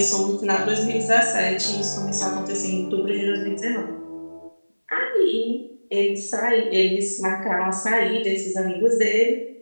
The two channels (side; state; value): both; inverted; correlation -1.00